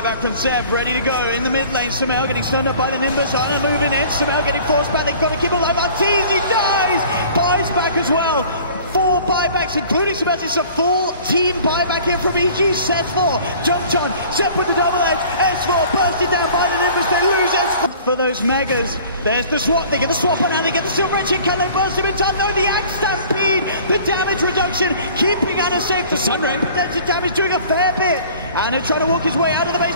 from Seb. Ready to go in the mid lane. Samel getting stunned up by the Nimbus. Ana moving in. Samel getting forced back. They've got to keep him alive. Arteezy dies. Buys back as well. 4 buybacks, including Samel. It's a full team buyback here from EG. S4 jumped on. Seb with the double edge. S4 bursted down by the Nimbus. They lose S4 for those megas. There's the swap. They get the swap on now. They get the silver edge. Can they burst him in time? No, the Axe Stampede. The damage reduction. Keeping Ana safe. The Sunray potential damage doing a fair bit. Ana trying to walk his way out of the base.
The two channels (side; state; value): both; inverted; correlation -0.48